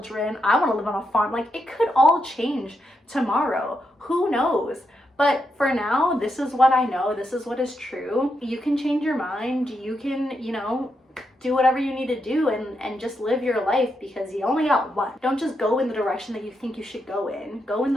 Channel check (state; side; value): normal; both; correlation 0.83